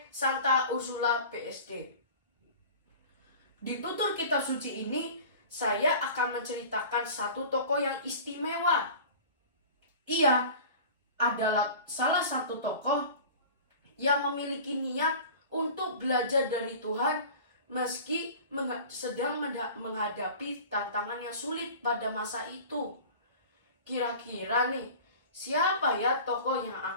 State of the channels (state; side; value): inverted; both; correlation -0.39